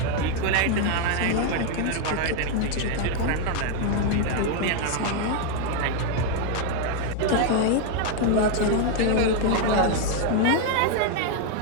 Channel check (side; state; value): both; different; correlation 0.00